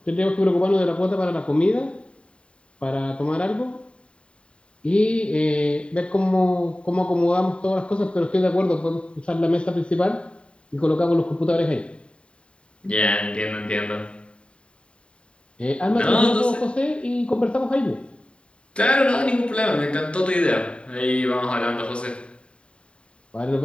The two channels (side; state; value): right; late; 0.056 ms